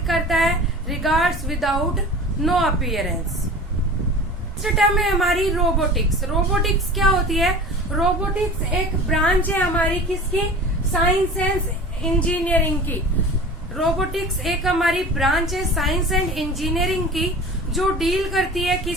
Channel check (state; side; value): normal; both; correlation 0.38